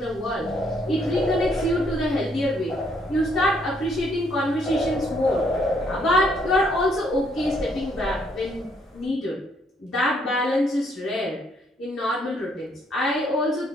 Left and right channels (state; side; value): normal; both; correlation 0.69